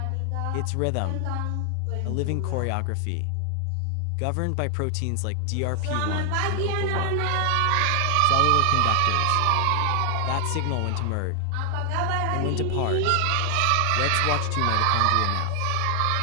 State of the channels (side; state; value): both; different; correlation 0.00